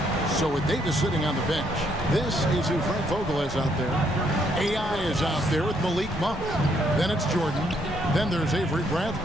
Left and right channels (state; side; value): normal; both; correlation 0.71